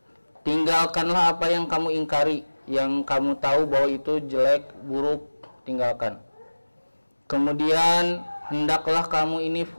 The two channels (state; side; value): inverted; both; correlation -1.00